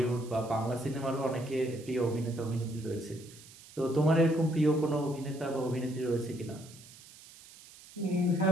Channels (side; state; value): right; noise; hiss, 20 dB below the sound